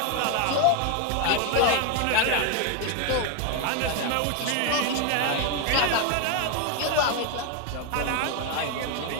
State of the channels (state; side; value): different; both; correlation 0.01